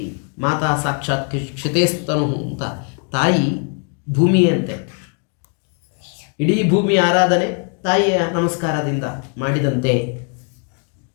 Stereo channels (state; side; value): quieter; right; 40.0 dB